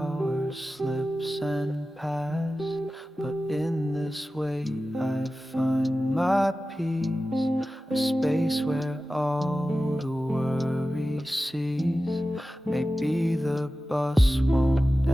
slips and pass. But in this way I find my peace, a space where all the worry cease. Maybe the bus won't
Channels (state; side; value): normal; both; correlation 0.95